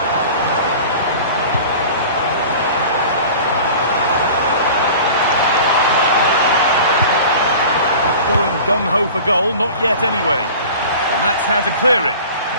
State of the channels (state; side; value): inverted; both; correlation -0.40